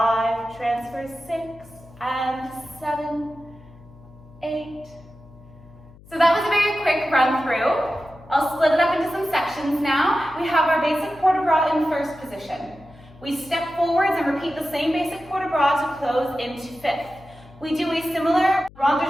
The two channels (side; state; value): left; noise; hum, 22 dB below the sound